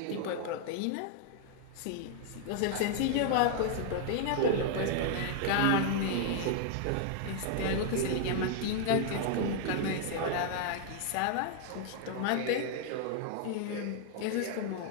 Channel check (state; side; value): different; both; correlation -0.01